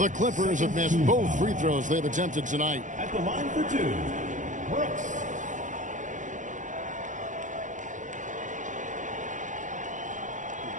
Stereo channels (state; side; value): late; left; 0.36 ms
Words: Clippers have missed both free throws they've attempted tonight. At the line for 2, Brooks.